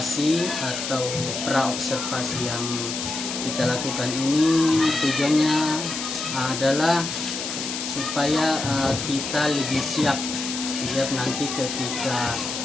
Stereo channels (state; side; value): noise; left; hiss, 5 dB below the sound